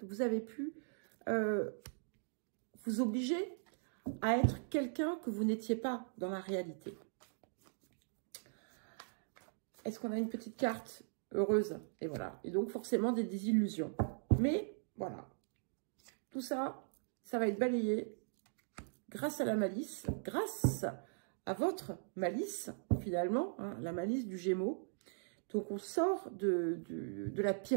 vous avez pu vous obliger à être quelqu'un que vous n'étiez pas dans la réalité. Est-ce qu'on a une petite carte heureuse? Et voilà. Et donc, forcément, des désillusions. Mais, voilà. Tout ça, ça va être balayé grâce à la malice, grâce à votre malice, finalement, hein, la malice du Gémeaux. Donc, on sort de la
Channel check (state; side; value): silent; left; digital silence